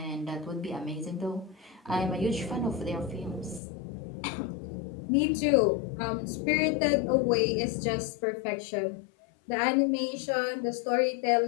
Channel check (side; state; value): right; drops out; at 3.6 s